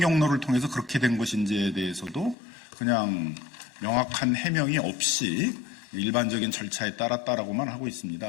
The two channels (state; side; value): drops out; right; at 2.4 s